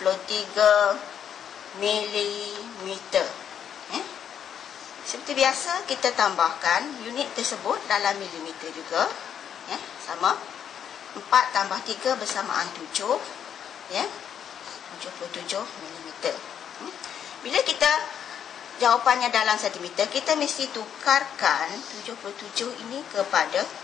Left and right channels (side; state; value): right; quieter; 8.8 dB